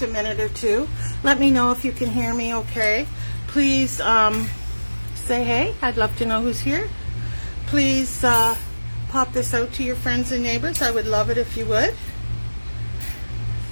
a minute or two. Let me know if you can hear me okay. Please say hey. I'd love to know who's here. Please pop this out to your friends and neighbors. I would love it if you would.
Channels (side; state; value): both; inverted; correlation -1.00